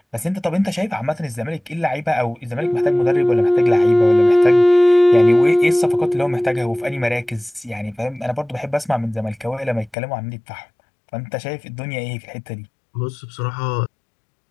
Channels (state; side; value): drops out; right; at 10.0 s